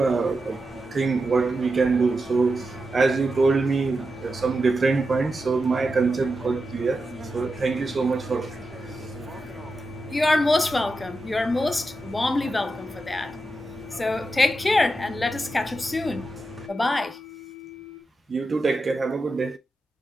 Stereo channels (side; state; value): both; normal; correlation 0.89